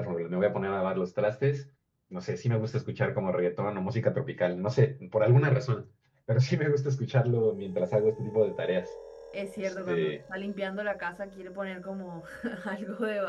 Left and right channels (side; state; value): both; identical; correlation 1.00